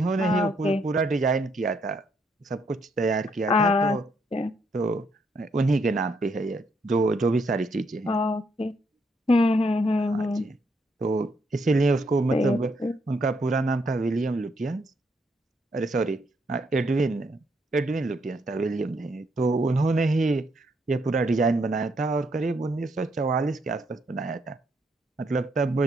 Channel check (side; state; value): both; normal; correlation 0.74